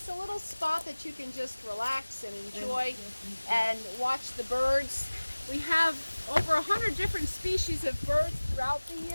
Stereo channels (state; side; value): inverted; both; correlation -1.00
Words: a little spot that you can just relax and enjoy and watch the birds. We have over 100 different species of birds throughout the